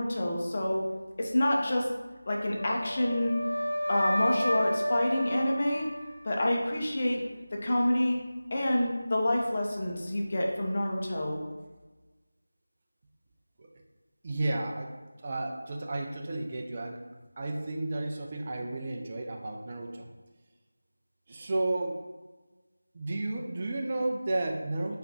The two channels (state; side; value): inverted; both; correlation -0.97